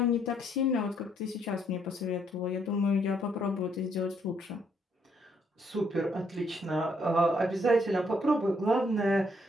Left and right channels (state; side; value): normal; both; correlation 0.70